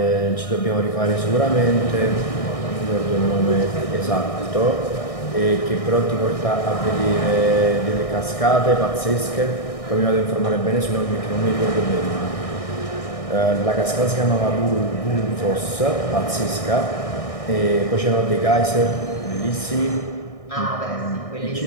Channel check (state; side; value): late; right; 1.6 ms